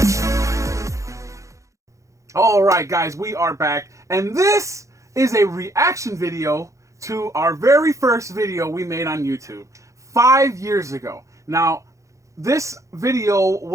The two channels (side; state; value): left; late; 0.15 ms